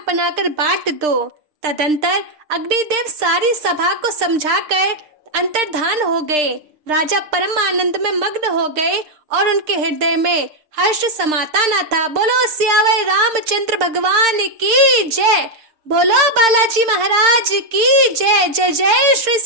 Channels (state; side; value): late; left; 6.6 ms